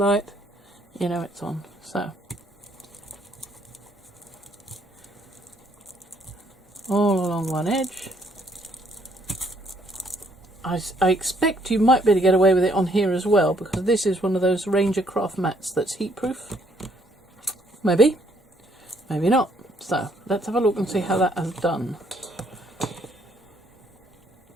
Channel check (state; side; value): normal; both; correlation 0.67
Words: you know it's on. So all along one edge. I expect you might be able to get away with it on here as well, because this is one of those Ranger craft mats that's heat proof. Maybe, maybe not. So let's have a look and see how that has done.